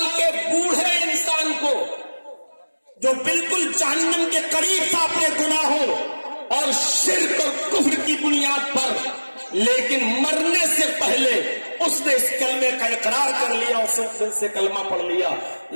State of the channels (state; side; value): inverted; both; correlation -1.00